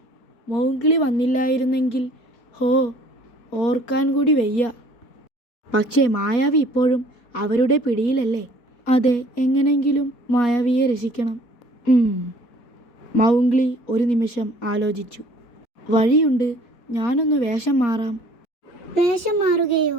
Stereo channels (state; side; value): late; right; 4.2 ms